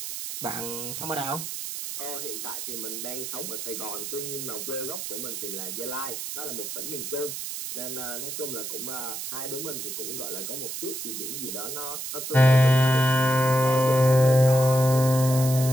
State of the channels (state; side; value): noise; right; hiss, 6 dB below the sound